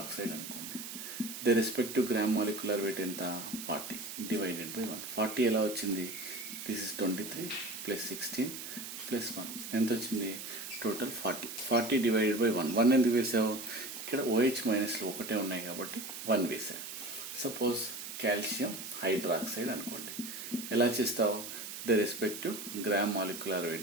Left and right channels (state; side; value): noise; right; hiss, 9 dB below the sound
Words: అనుకోండి. The respective gram molecular weight ఎంత? 40 డివైడెడ్ బై 1. 40 ఎలా వచ్చింది? దిస్ ఇస్ 23 ప్లస్ 16 ప్లస్ 1 ఎంత వచ్చింది? టోటల్ 40. 40 divided by 1. 1 ఎందుకు వేసావు? ఇక్కడ OH మైనస్లు ఒకటే ఉన్నాయి కాబట్టి 1 వేసా. సపోజ్ కాల్షియం హైడ్రాక్సైడ్ అనుకోండి. ఎలా చేస్తావు? The respective gram molecular